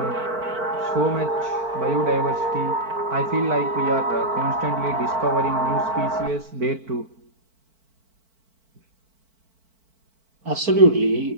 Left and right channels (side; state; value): left; late; 4.5 ms